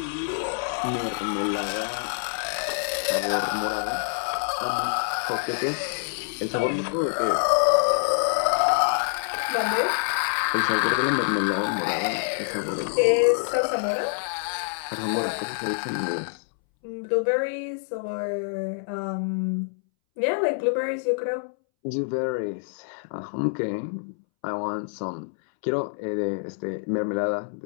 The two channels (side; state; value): right; silent; 61 dB below the other